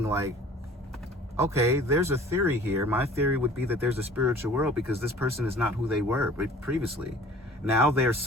like, okay, there's a theory here. My theory would be that there's a spiritual world because this person is not who they were previously. Now they're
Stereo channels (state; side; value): normal; both; correlation 0.48